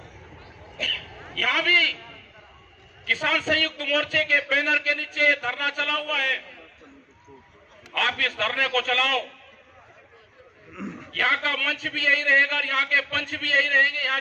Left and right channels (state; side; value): identical; both; correlation 1.00